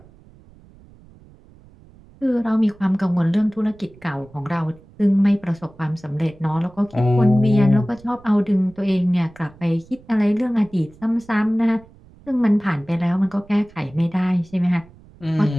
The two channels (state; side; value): noise; right; rumble, 25 dB below the sound